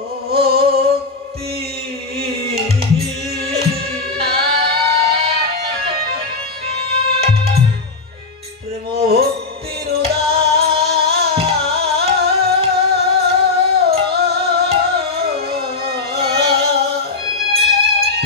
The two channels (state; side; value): quieter; right; 3.9 dB